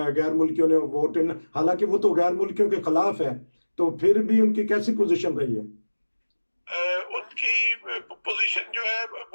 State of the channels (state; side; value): inverted; both; correlation -1.00